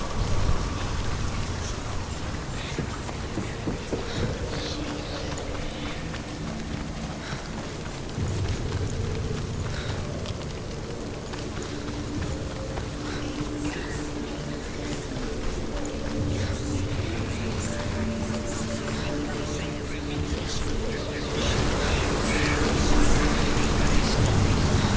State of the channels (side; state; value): both; identical; correlation 1.00